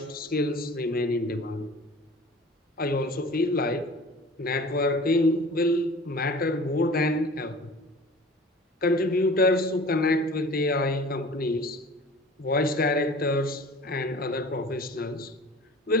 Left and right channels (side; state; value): both; normal; correlation 0.43